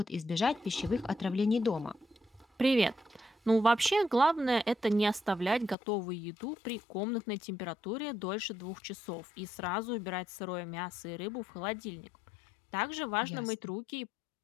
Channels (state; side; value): drops out; right; at 5.8 s